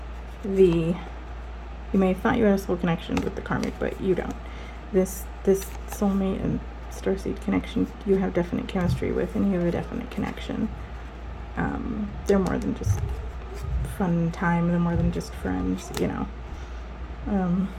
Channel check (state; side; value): identical; both; correlation 1.00